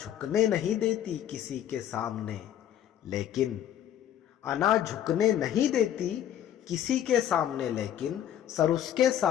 نہیں دیتی کسی کے سامنے، لیکن انا جھکنے نہیں دیتی کسی کے سامنے لیکن سر اس کے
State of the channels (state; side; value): quieter; right; 10.7 dB